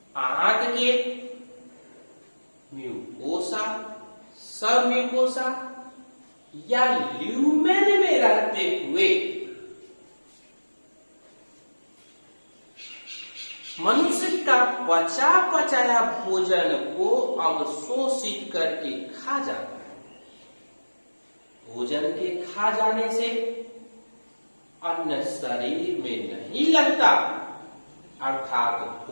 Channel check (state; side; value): inverted; both; correlation -1.00